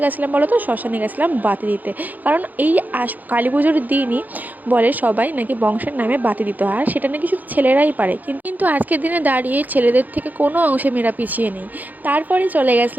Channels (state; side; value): late; left; 0.083 ms